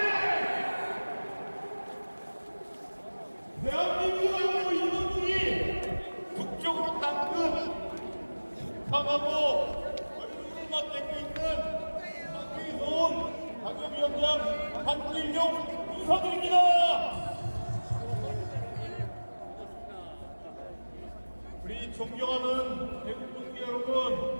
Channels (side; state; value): both; inverted; correlation -1.00